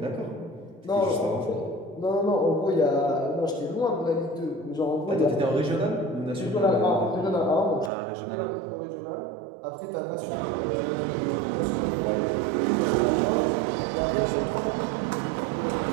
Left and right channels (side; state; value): left; drops out; at 7.9 s